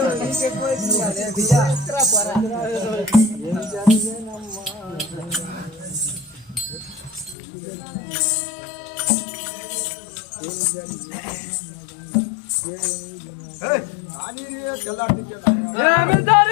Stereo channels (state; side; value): drops out; right; at 7.4 s